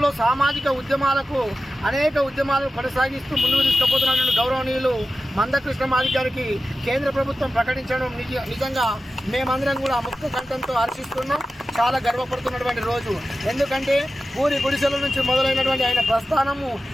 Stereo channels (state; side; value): normal; both; correlation 0.93